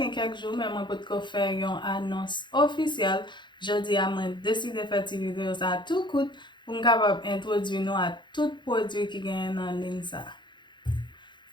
kek jou men mwen pot ko fè yon anons ofisyel. Jodi a mwen deside fè ti video sa tout kout pou m kapab introdwi nou a tout prodwi ki gen nan lin sa.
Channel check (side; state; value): right; late; 0.22 ms